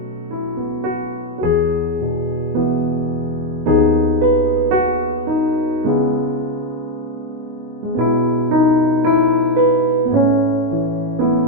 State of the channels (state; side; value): late; left; 19 ms